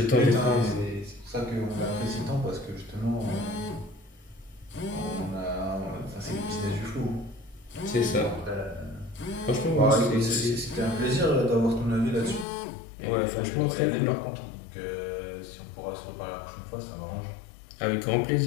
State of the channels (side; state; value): right; drops out; at 12.5 s